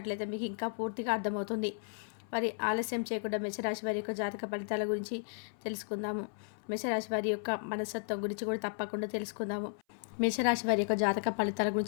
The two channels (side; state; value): right; silent; 55 dB below the other